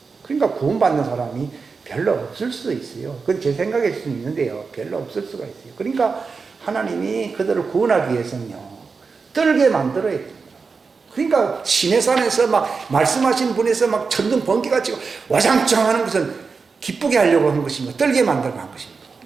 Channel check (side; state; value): left; quieter; 4.8 dB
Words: 그러니까 구원받는 사람이 별로 없을 수도 있어요. 그건 제 생각일 수는 있는데요. 별로 없을 수가 있어요. 그러니까 하나님이 그들을 구원하기 위해서는요, 떨게 만들어야 됩니다. 그러니까 시내산에서 막 말씀하신 분에서 막 천둥 번개가 치고 와장창 하는 것은 기쁘게 하려고 한 것입니다. 떨게 만들고 한 것입니다.